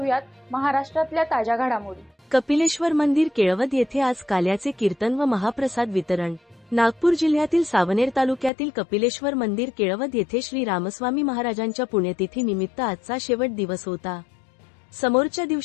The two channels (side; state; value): right; drops out; at 8.5 s